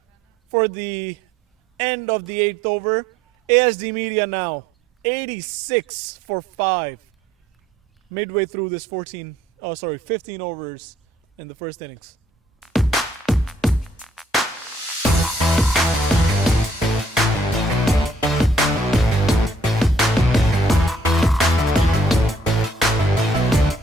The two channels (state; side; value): normal; both; correlation 0.64